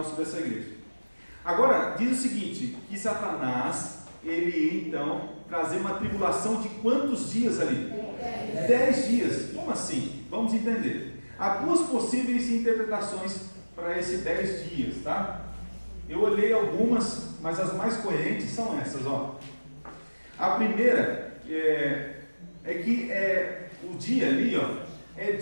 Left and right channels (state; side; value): inverted; both; correlation -1.00